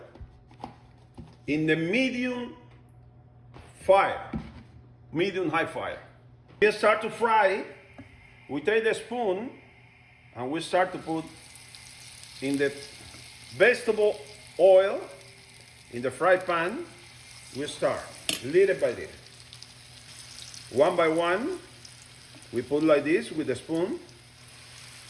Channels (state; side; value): identical; both; correlation 1.00